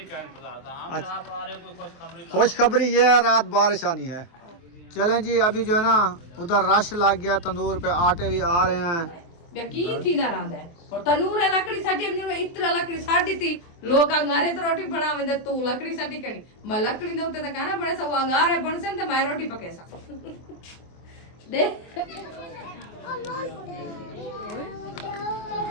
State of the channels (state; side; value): late; right; 24 ms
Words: का इंतजार था। हम अच्छा। आप आ रहे कोई खुशखबरी खुशखबरी ये है, रात बारिश आनी है। चलें जी, अभी जो है ना उधर रश लग गया, तंदूर पे आटे भी आ रहे हैं। यकीन थी ना रांदे और तनूर है लकड़ी साटी हमने इतना लकड़ी साटी थी लोग अंगारे तो रोटी बनावे दे तू लकड़ी साटी करी मैं लकड़ी दे उते त खाना बड़े सब अंगारे बनसे त मैं रोटी पके सा दे